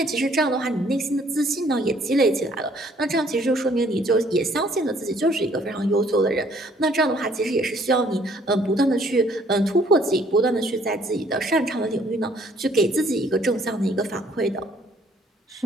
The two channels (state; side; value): normal; both; correlation 0.62